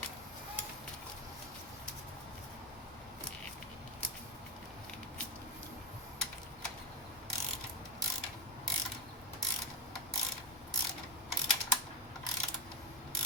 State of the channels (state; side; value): normal; both; correlation 0.11